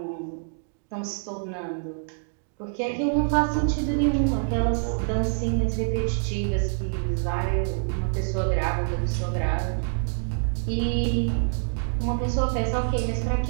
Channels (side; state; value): left; silent; digital silence